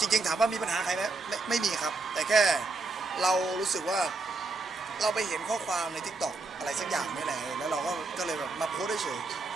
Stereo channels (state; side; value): quieter; left; 3.5 dB